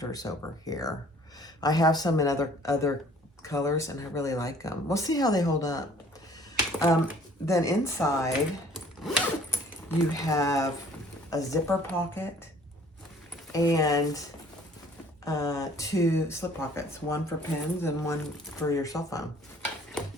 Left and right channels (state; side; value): normal; both; correlation 0.55